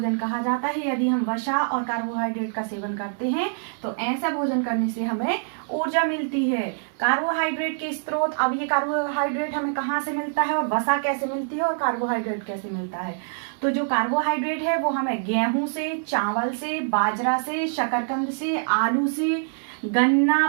कहा जाता है। यदि हम वसा और कार्बोहाइड्रेट का सेवन करते हैं तो ऐसा भोजन करने से हमें ऊर्जा मिलती है। कार्बोहाइड्रेट के स्रोत, अब ये कार्बोहाइड्रेट हमें कहाँ से मिलता है और वसा कैसे मिलती है और कार्बोहाइड्रेट कैसे मिलता है? तो जो कार्बोहाइड्रेट है वो हमें गेहूं से, चावल से, बाजरा से, शकरकंद से, आलू से,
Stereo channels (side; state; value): left; silent; 62 dB below the other